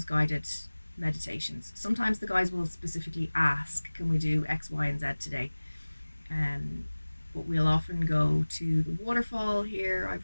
guided meditations. Sometimes the guys will specifically ask, can we do X, Y, and Z today? Um, but we'll often go to the waterfall here.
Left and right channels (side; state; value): both; inverted; correlation -1.00